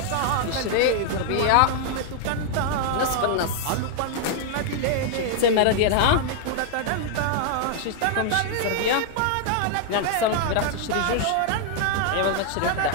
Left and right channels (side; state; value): both; different; correlation 0.00